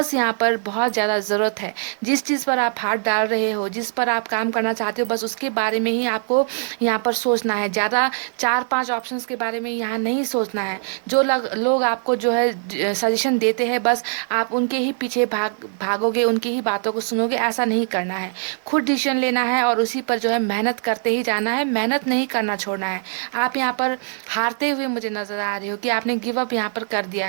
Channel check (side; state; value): left; silent; 61 dB below the other